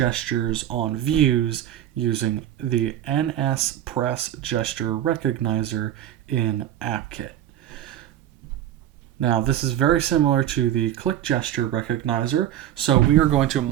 on views using the NSPressGestureRecognizer in AppKit. Now, this is very similar to the click gesture recognizer, so we are going to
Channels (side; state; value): left; quieter; 11.7 dB